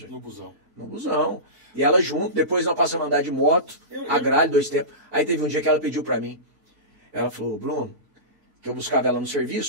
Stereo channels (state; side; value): late; left; 4.5 ms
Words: No busão. No busão. E ela junto, depois nós passamos a andar de moto, a gralha, 2 tempos. Aí teve um dia que ela pediu pra mim. Ela falou, Bruno, que eu buscava ela no